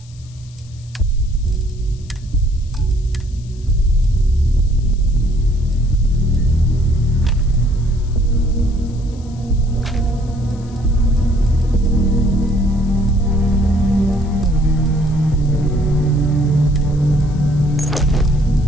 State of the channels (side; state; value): left; noise; hiss, 27 dB below the sound